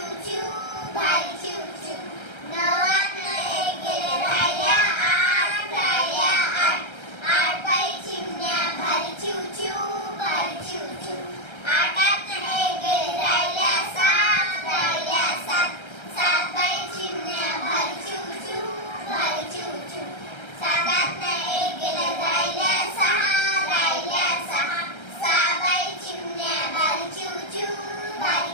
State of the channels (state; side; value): late; right; 1.3 ms